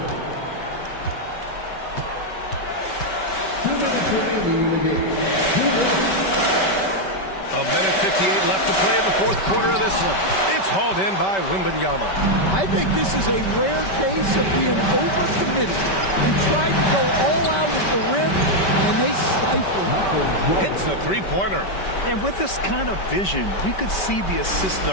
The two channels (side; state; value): right; late; 5.2 ms